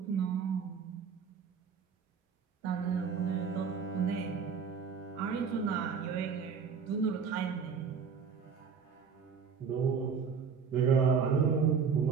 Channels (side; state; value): left; quieter; 6.2 dB